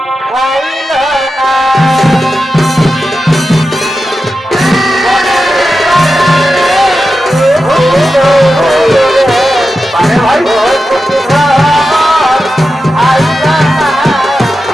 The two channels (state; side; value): normal; both; correlation 0.91